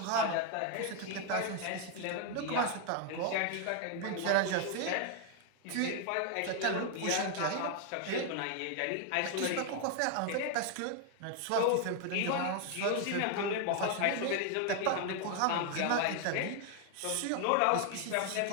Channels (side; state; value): both; different; correlation 0.00